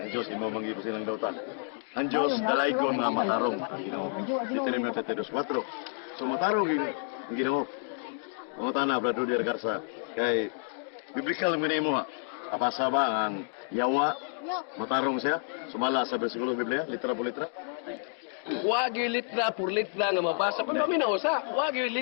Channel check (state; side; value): silent; right; 58 dB below the other